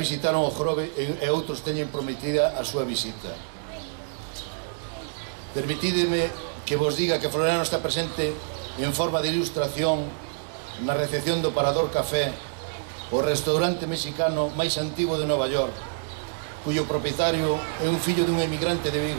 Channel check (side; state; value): left; silent; digital silence